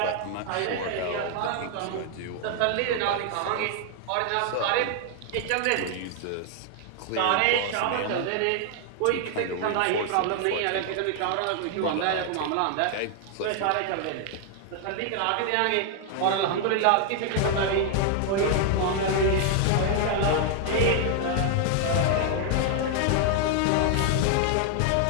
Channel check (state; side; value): different; both; correlation 0.00